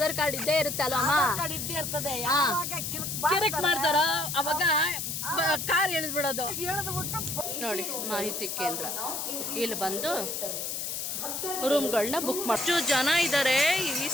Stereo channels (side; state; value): left; noise; hiss, 3 dB below the sound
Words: ಕಾರ್ಡ್ ಇದ್ದೇ ಇರುತ್ತೆ ಅಲ್ವಮ್ಮ, ಕಿರಿಕ್ ಮಾಡ್ತಾರ ಅವಾಗ ಕಾರ್ ಎಳೆದ್ಬಿಡೋದು. ನೋಡಿ ಮಾಹಿತಿ ಕೇಂದ್ರ, ಇಲ್ಲಿ ಬಂದು ರೂಮ್ಗಳನ್ನ ಬುಕ್ ಮಾಡಿ. ಎಷ್ಟು ಜನ ಇದ್ದಾರೆ ಈ